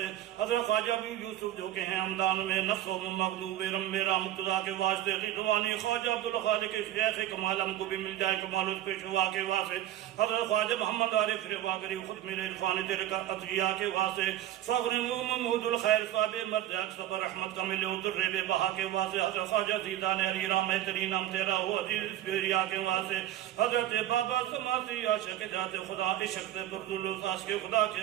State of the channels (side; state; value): left; quieter; 12.9 dB